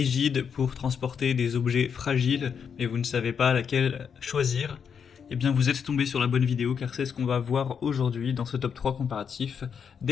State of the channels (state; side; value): quieter; right; 7.0 dB